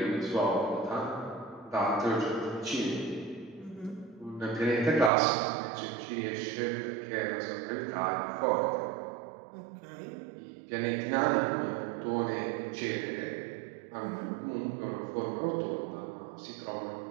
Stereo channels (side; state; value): left; drops out; at 5.1 s